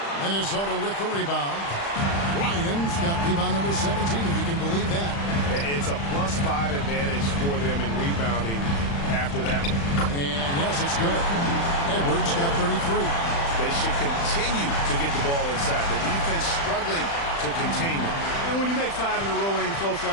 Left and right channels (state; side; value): late; right; 35 ms